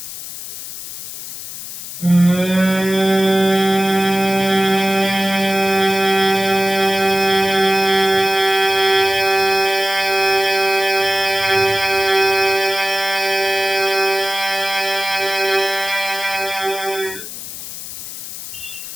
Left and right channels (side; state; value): left; noise; hiss, 10 dB below the sound